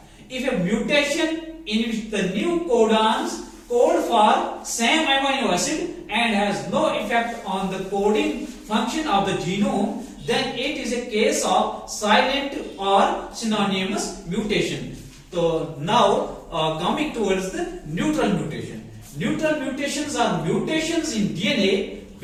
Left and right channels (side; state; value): both; identical; correlation 1.00